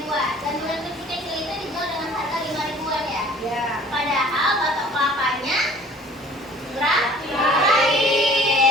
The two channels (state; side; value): normal; both; correlation 0.50